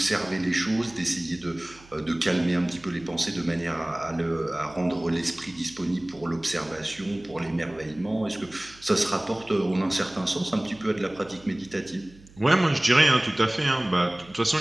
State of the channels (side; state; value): right; noise; hum, 24 dB below the sound